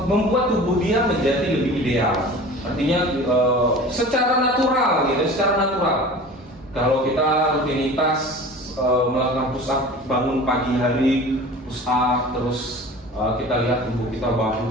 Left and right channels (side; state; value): both; normal; correlation 0.39